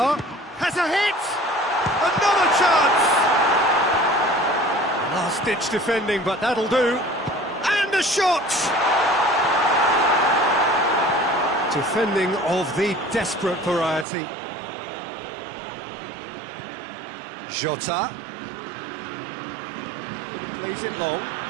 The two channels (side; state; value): left; drops out; at 14.1 s